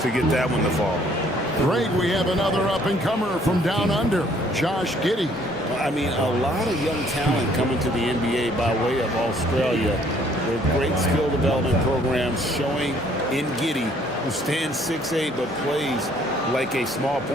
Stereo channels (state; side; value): normal; both; correlation 0.62